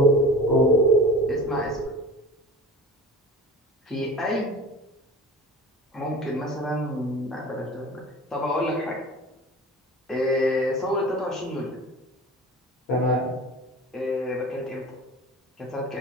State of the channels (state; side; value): normal; both; correlation 0.37